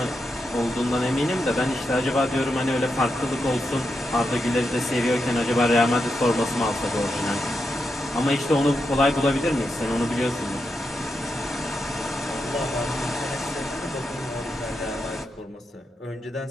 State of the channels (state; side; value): normal; both; correlation 0.86